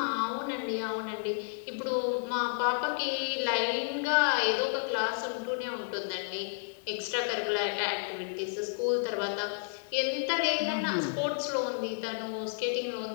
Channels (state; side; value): silent; right; 55 dB below the other